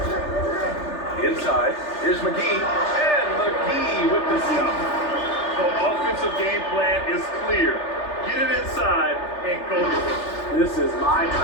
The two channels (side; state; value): right; late; 3.3 ms